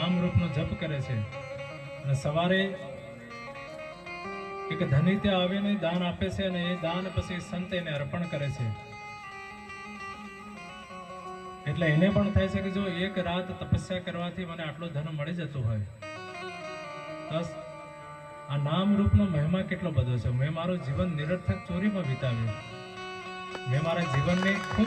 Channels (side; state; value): both; identical; correlation 1.00